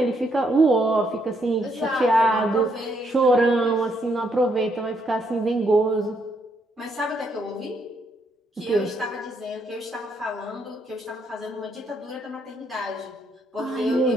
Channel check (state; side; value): normal; both; correlation 0.74